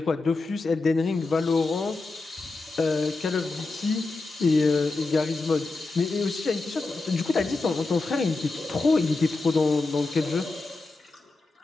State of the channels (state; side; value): quieter; right; 3.5 dB